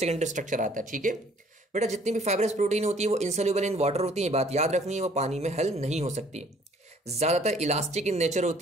स्ट्रक्चर आता है, ठीक है बेटा। जितनी भी फाइब्रस प्रोटीन होती है वो इनसोल्यूबल इन वाटर होती है, बात याद रखनी है, वो पानी में हल नहीं हो सकती। ज़्यादातर इलास्टिक इन नेचर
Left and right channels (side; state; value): both; normal; correlation 0.58